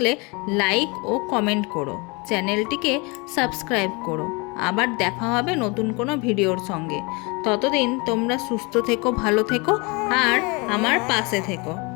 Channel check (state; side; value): quieter; right; 28.5 dB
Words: লাইক ও কমেন্ট করো, চ্যানেলটিকে সাবস্ক্রাইব করো। আবার দেখা হবে নতুন কোনো ভিডিওর সঙ্গে। ততদিন তোমরা সুস্থ থেকো, ভালো থেকো আর আমার পাশে থেকো।